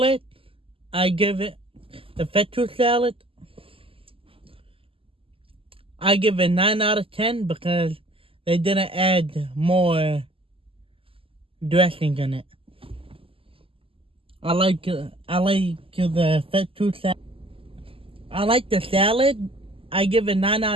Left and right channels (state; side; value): late; left; 0.26 ms